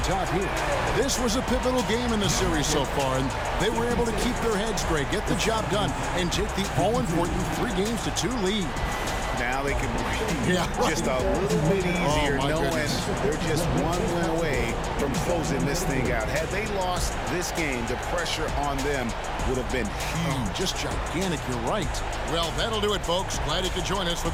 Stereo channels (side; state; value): both; identical; correlation 1.00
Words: top here. This was a pivotal game in the series so far, and they were able to keep their heads straight, get the job done, and take the all-important 3-2 lead. Now they can breathe just a little bit easier, knowing they're just one win away from closing this thing out. Had they lost this game, the pressure on them would have been huge. Just gigantic, you're right. Well, that'll do it, folks. Glad you could join us for